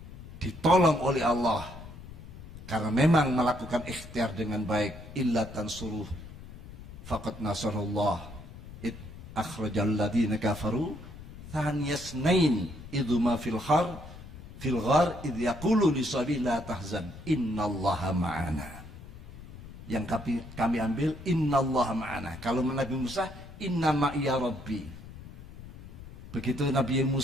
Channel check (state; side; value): noise; left; rumble, 15 dB below the sound